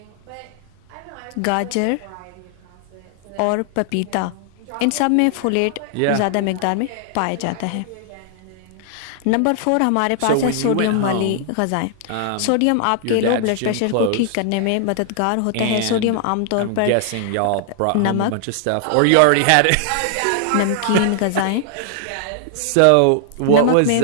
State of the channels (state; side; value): different; both; correlation 0.00